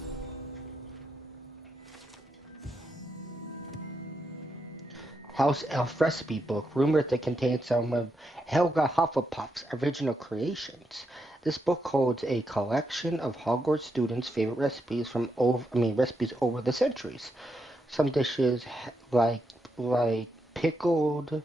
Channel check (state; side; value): normal; both; correlation 0.82